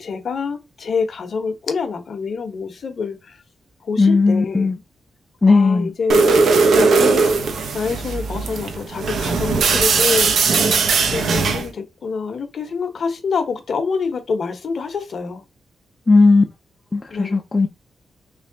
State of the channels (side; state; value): both; normal; correlation 0.83